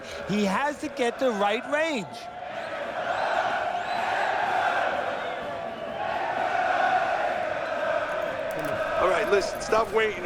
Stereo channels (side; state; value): both; identical; correlation 1.00